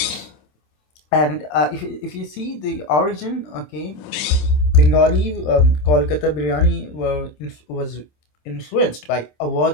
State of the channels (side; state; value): right; late; 27 ms